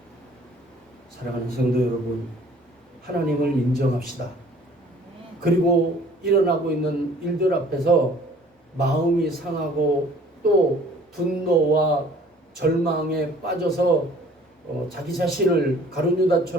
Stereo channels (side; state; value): both; normal; correlation 0.53